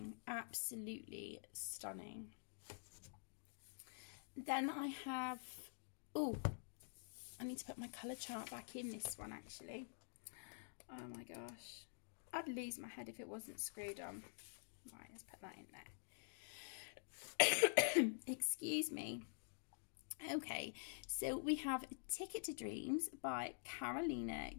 absolutely stunning. Then I have, oh, I need to put my colour chart back in this one actually. Oh my gosh, I'd lose my head if it wasn't screwed on. Right, let's put that in there. Excuse me. Okay, so we have Ticket to Dreams by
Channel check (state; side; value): silent; right; digital silence